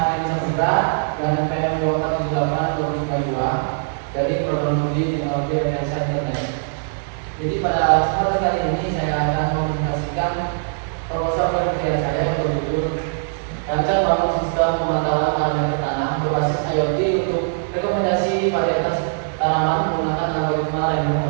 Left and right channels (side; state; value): left; silent; 65 dB below the other